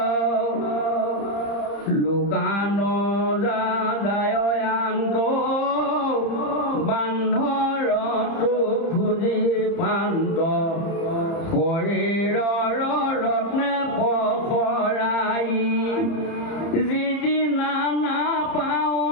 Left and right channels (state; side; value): late; right; 30 ms